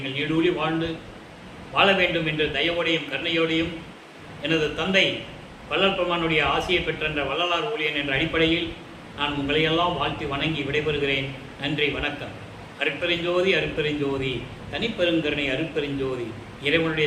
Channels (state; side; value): identical; both; correlation 1.00